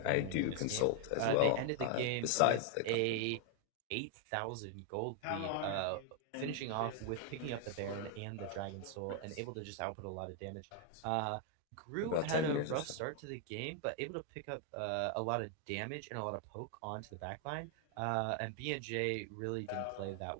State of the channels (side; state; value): both; different; correlation 0.00